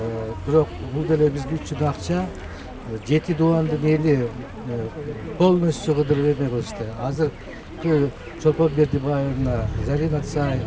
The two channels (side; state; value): both; identical; correlation 1.00